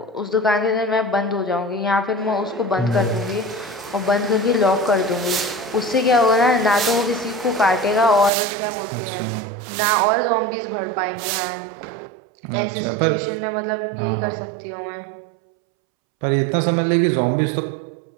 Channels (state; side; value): drops out; left; at 8.3 s